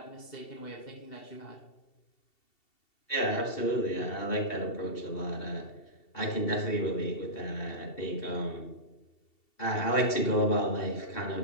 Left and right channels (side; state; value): right; late; 2.7 ms